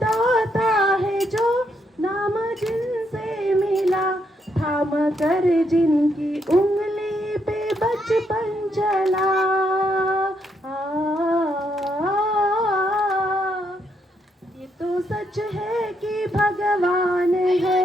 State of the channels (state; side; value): normal; both; correlation 0.76